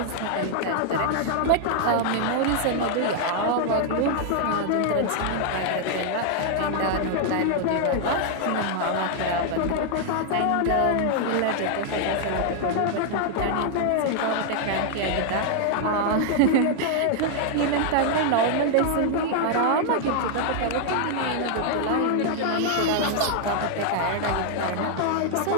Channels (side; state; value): both; different; correlation 0.00